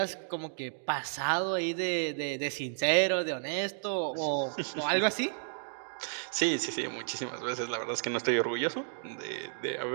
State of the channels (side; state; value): left; silent; digital silence